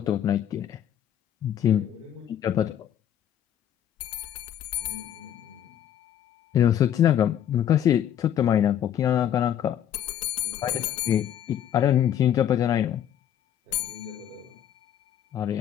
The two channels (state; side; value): quieter; right; 10.2 dB